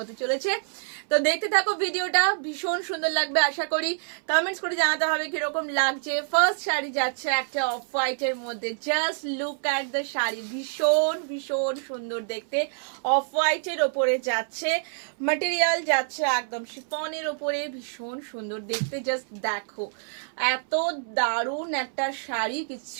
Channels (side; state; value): left; silent; 60 dB below the other